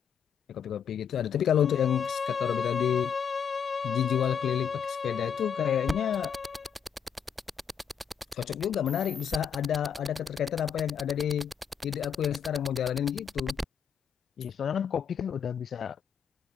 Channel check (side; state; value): right; quieter; 7.5 dB